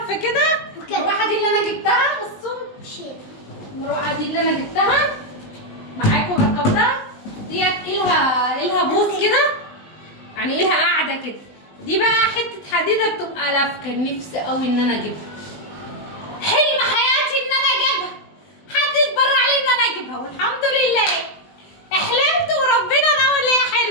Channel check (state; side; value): late; right; 19 ms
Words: كده. المروحه دي اللي انا جبتها، بصوا المروحه دي اللي انا جبتها معاكم ركبتها، ديت لها بوز كده، يعني لها قاعده كده. دي بقى حته حديده بتبقى لافكه، نفسي قوي ان انا اجيبها، حلم حياتي ان انا اجيبها، حد يتبرع لي ان انا اجيبها، والحمد لله احلمت وربنا ناول ليا